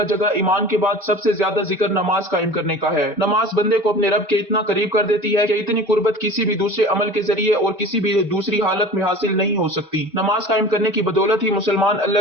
जगह ईमान के बाद सबसे ज्यादा जिक्र नमाज कायम करने का है। नमाज बंदे को अपने रब के इतना करीब कर देती है कि इतनी कुर्बत किसी भी दूसरे अमल के जरिए और किसी भी दूसरी हालत में हासिल नहीं हो सकती। नमाज कायम करने की बदौलत ही मुसलमान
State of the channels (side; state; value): both; normal; correlation 0.39